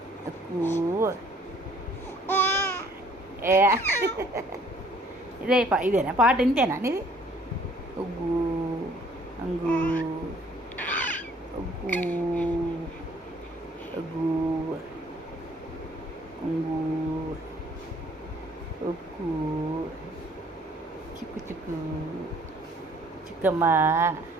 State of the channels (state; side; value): normal; both; correlation 0.59